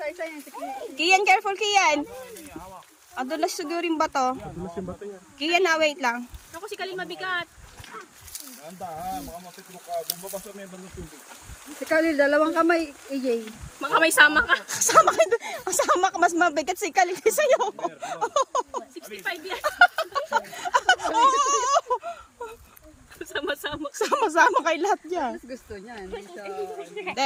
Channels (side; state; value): both; identical; correlation 1.00